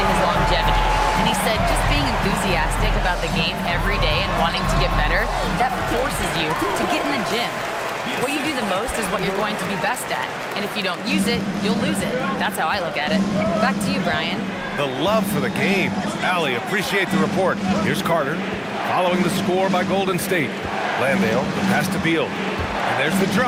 his longevity. And he said just being enthusiastic about the game every day and wanting to get better, that forces you to get in the gym. What you do the most is what you're going to be best at. And if you don't use it, you'll lose it. That's how I look at it. Back to you, Brian. The love for the game. Allie, appreciate the report. Here's Carter, following the score by Golden State. Landale, the pass to Beal. And there's the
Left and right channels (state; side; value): identical; both; correlation 1.00